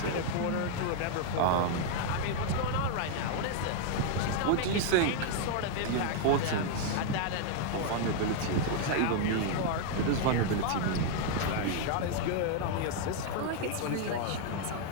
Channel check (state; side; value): different; both; correlation 0.00